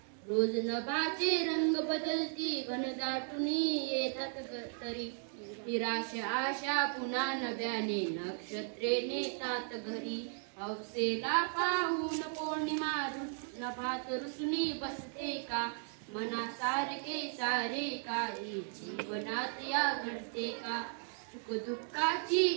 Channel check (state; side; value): silent; left; 54 dB below the other